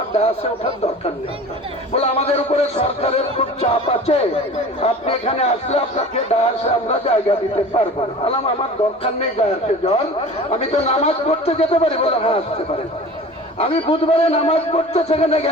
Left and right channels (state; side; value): normal; both; correlation 0.39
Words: ডায়াসে ওঠার দরকার নেই, বলে আমাদের উপরে সরকারের খুব চাপ আছে, আপনি এখানে আসলে আপনাকে ডায়াসে আমরা জায়গা দিতে পারবো না। বললাম আমার দরকার নেই ডায়াসে যাওয়ার, আমি তো নামাজ পড়তে যেতে পারি। বলে হ্যাঁ আসতে পারেন। আমি বুধবারে নামাজ পড়তে সেখানে